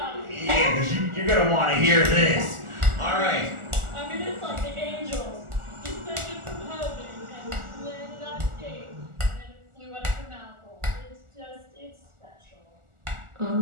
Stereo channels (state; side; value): late; left; 1.4 ms